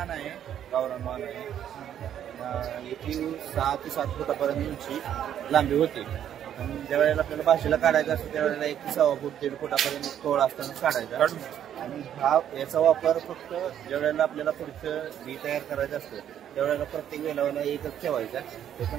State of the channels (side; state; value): left; quieter; 10.1 dB